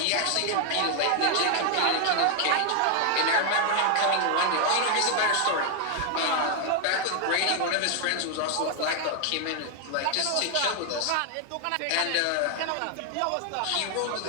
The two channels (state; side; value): different; both; correlation 0.00